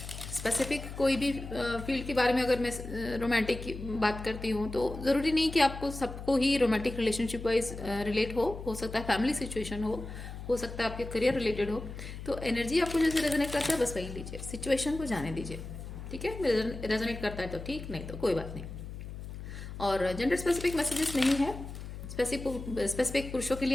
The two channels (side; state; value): left; noise; hum, 10 dB below the sound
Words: स्पेसिफिक कोई भी फील्ड के बारे में अगर मैं रोमांटिक की बात करती हूँ तो ज़रूरी नहीं कि आपको सबको ही रोमांटिक रिलेशनशिप वाइज रिलेट हो सकता है फैमिली सिचुएशन हो सकता है आपके करियर रिलेटेड हो। तो एनर्जी आपको जैसे रेजोनेट करता है बस वही लीजिए, सिचुएशन को जाने दीजिए। ठीक है, रेजोनेट करता है तो ठीक, नहीं तो कोई बात नहीं। और जेंडर स्पेसिफिक मैसेजेस नहीं है, स्पेसिफिक पुरुषों के